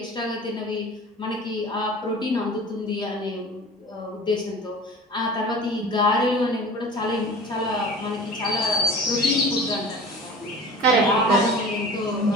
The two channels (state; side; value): normal; both; correlation 0.40